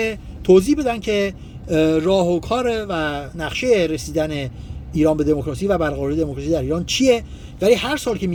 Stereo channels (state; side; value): identical; both; correlation 1.00